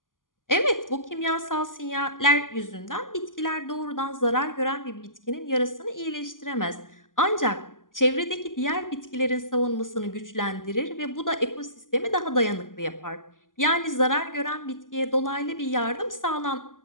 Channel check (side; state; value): right; late; 0.89 ms